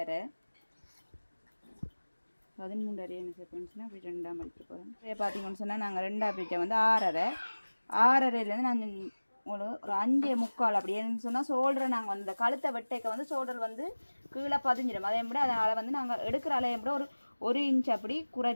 என்ன செகண்ட்ஸ்னால் அப்படி 2ஆக மடிக்க போகிறோம். இதே பார்த்தீங்கன்னு சொன்னால் நாங்கள் 2ஆக பிரிக்க வந்து 6.5 நான் ஒரு 5.25 அப்படி என்னன்னு சொன்னால் ஷோல்டரை நாங்கள் வந்து இந்த கழுத்தை வெட்டைக்க வந்து ஷோல்டர் வந்து கீழே பதிஞ்சிடும். அதே மாதிரி அதனால் வந்து நாங்கள் எடுக்கிற அலையை கூட ஒரு இன்ச் அப்படி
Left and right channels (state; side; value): inverted; both; correlation -1.00